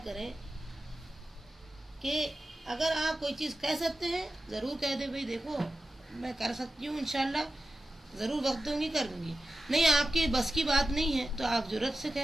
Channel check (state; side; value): normal; both; correlation 0.94